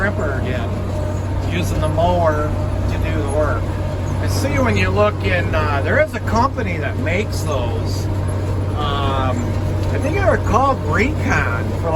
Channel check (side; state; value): both; identical; correlation 1.00